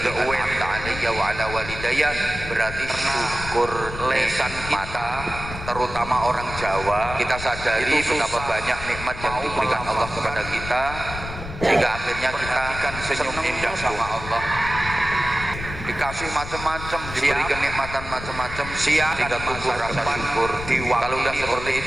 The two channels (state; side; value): noise; left; rumble, 10 dB below the sound